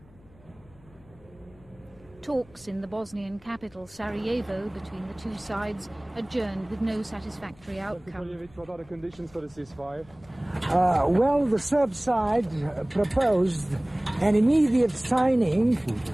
Talks in the Bosnian capital, Sarajevo, between the two sides adjourned with no satisfactory outcome. What are the conditions for the ceasefire? Well, the Serb side proposed an immediate signing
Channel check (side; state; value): left; noise; hum, 26 dB below the sound